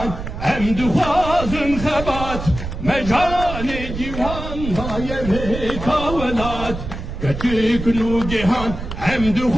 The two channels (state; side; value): noise; right; rumble, 8 dB below the sound